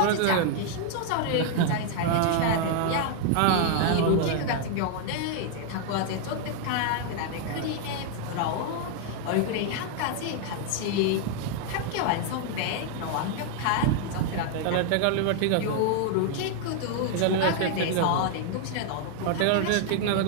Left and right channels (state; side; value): different; both; correlation 0.00